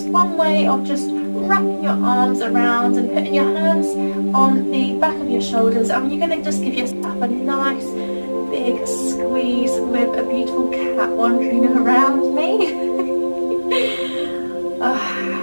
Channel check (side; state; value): both; inverted; correlation -1.00